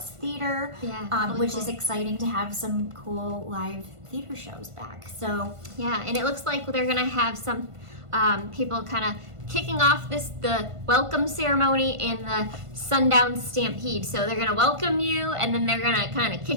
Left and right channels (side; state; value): left; late; 1.5 ms